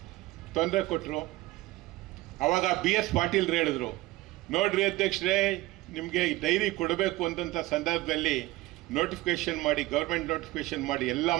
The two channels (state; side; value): quieter; left; 18.8 dB